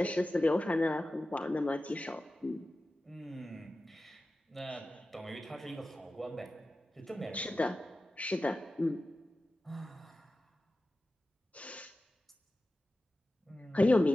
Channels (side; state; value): both; normal; correlation 0.94